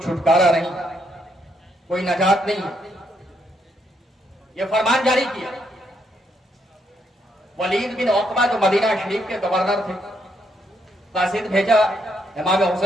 چھٹکارا نہیں، کوئی نجات نہیں. یہ فرمان جاری کیا. ولید بن عقبہ جو مدینہ شریف کے گورنر تھے، قاصد بھیجا امام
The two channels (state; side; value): normal; both; correlation 0.75